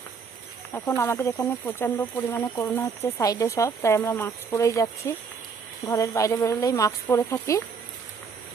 এখন আমাদের এখানে প্রচণ্ড পরিমাণে করোনা হচ্ছে সাইডে সব, তাই আমরা মাস্ক পরেই যাচ্ছি। ঘরের বাইরে বেরোলেই মাস্ক পরে থাকি।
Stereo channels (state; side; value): quieter; left; 5.6 dB